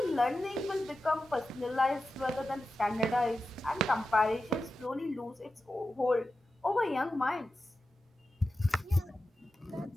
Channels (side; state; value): both; normal; correlation 0.92